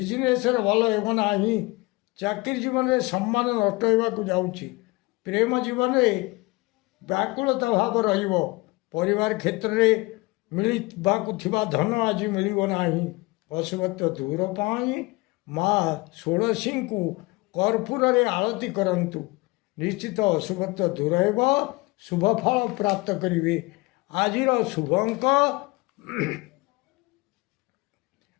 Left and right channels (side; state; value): right; quieter; 23.8 dB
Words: रे भल हेबो नाही चाकरी जीवन रे सम्मान नष्ट हेबाकु जाउछि प्रेम जीवन रे व्याकुलता भाव रहिबो परिवार क्षेत्र रे मिलिबाकु थिबा धन आज मिलिबो नाही अशुभत्व दूर पाई माँ षोड़शी को कर्पूर रे आरती करंतु निश्चित अशुभत्व दूर हेबो शुभ फल प्राप्त करिवे आजिर शुभ अंक